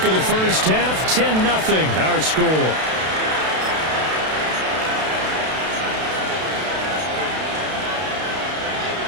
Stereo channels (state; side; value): late; left; 32 ms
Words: of the first half. 10-0 our score.